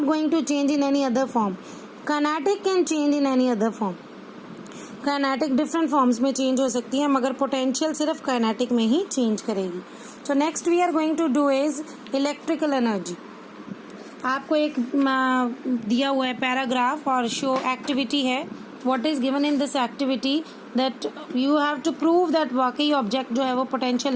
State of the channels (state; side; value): identical; both; correlation 1.00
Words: going to change in any other form. Kinetic can change in any other form. Kinetic different forms में change हो सकती है, मगर potential सिर्फ kinetic में ही change करेगी. So next we are going to do is electrical energy. आपको एक दिया हुआ है पैराग्राफ और शो एक्टिविटी है. What is given in this activity that you have to prove that वाकई ऑब्जेक्ट जो है वो पोटेंशियल